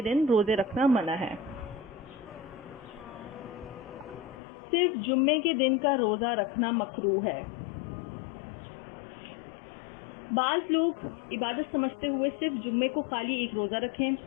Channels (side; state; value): right; drops out; at 4.4 s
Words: دن روزے رکھنا منع ہے. صرف جمعے کے دن کا روزہ رکھنا مکروہ ہے. بعض لوگ عبادت سمجھتے ہوئے صرف جمعے کو خالی ایک روزہ رکھیں